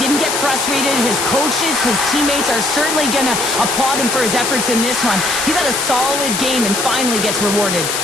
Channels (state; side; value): noise; left; hiss, 2 dB below the sound